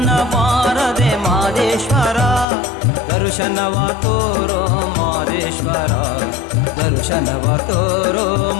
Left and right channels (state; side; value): drops out; right; at 2.5 s